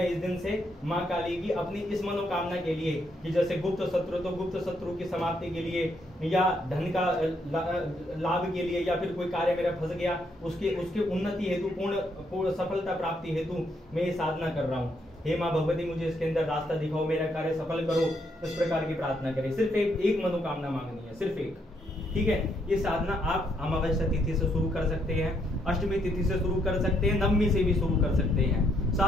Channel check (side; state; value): both; normal; correlation 0.74